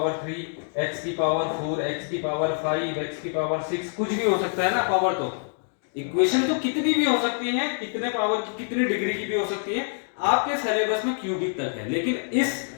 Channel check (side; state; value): right; silent; 59 dB below the other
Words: 3, x की पावर 4, x की पावर 5, x की पावर 6, कुछ भी हो सकता है ना पावर। तो इक्वेशन तो कितनी भी हो सकती है, कितने पावर की, कितनी डिग्री की भी हो सकती है, आपके सिलेबस में क्यूबिक तक है। लेकिन इस